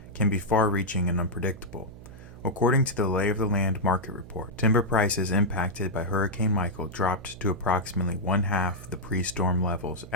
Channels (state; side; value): noise; right; hum, 17 dB below the sound